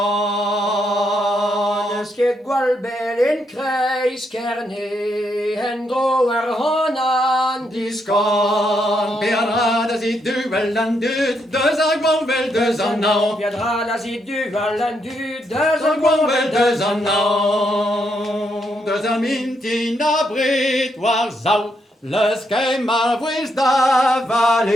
Ske gwal bel in kreis kerne, hen dro ar honan Diskan, Bernard as i duel an dud, deus a gwal bel deus an nao. Viendra la zi du valan du Deus a gwal bel deus an nao. Deus a mintin a brit war zau, leus kem ma vwez da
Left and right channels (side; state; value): both; normal; correlation 0.78